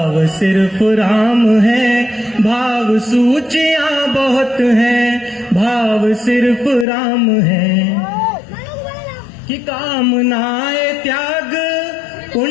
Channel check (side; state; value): right; drops out; at 6.9 s